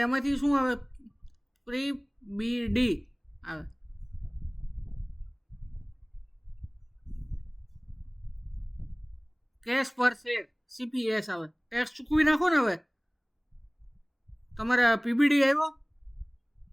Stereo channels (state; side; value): identical; both; correlation 1.00